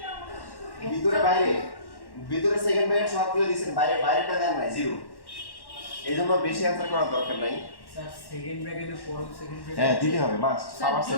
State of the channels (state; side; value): late; right; 1.1 ms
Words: ভিতরে বাইরে, ভিতরে সেকেন্ড ব্র্যাকেট সবগুলো দিয়েছেন, বাইরে বাইরেটা দেন নাই 0, এই জন্য বেশি অ্যান্সার করার দরকার নাই। স্যার সেকেন্ড ব্র্যাকেটে পড়ো, সেকেন্ড হ্যাঁ দিতে হবে মাস্ট, স্যার পাওয়ার সেট